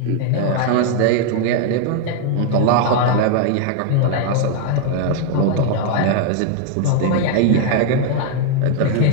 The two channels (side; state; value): both; different; correlation 0.00